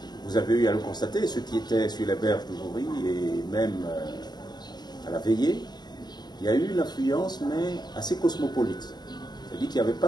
vous avez eu à le constater, ceux qui étaient sur les berges du Jouri et même à la veillée, il y a eu une affluence, mais assez cosmopolite. C'est-à-dire qu'il n'y avait pas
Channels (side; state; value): right; late; 0.20 ms